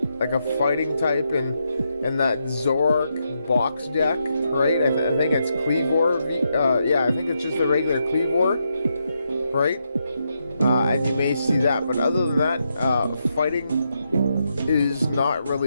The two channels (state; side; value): inverted; both; correlation -0.82